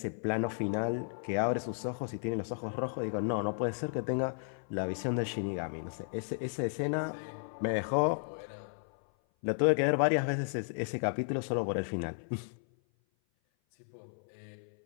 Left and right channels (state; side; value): silent; right; 55 dB below the other